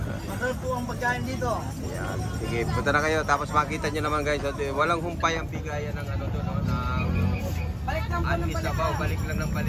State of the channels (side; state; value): both; identical; correlation 1.00